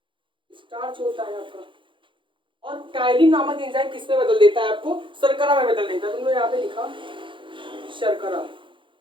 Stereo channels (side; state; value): left; late; 0.24 ms